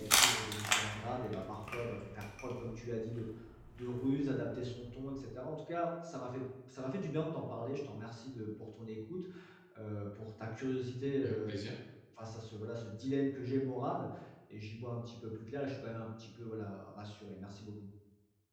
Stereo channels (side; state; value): both; identical; correlation 1.00